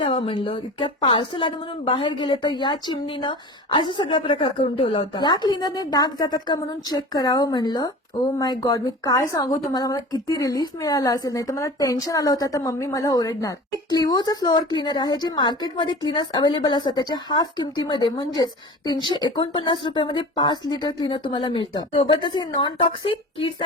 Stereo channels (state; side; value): normal; both; correlation 0.37